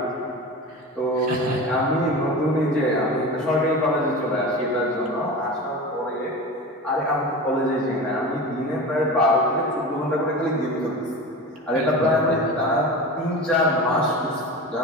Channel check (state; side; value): normal; both; correlation 0.30